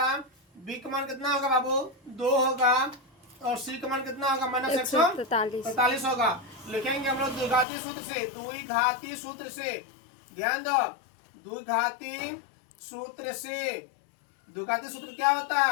b का मान कितना होगा बाबू 2 होगा और c का मान कितना होगा माइनस 143 होगा। लिखेंगे हम लोग द्विघाती सूत्र से, ध्यान दो, द्विघाती सूत्र क्या होता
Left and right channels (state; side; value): drops out; right; at 7.7 s